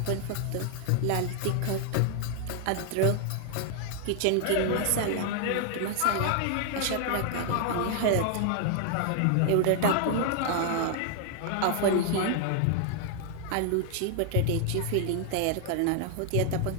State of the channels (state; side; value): different; both; correlation 0.00